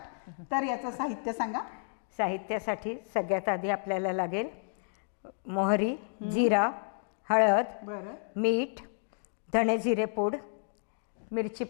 तर याचं साहित्य सांगा। साहित्यासाठी सगळ्यात आधी आपल्याला लागेल मोहरी, जिरा, हळद, बरं, मीठ, धणे जिरे पूड, मिरची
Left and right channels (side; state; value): right; silent; 57 dB below the other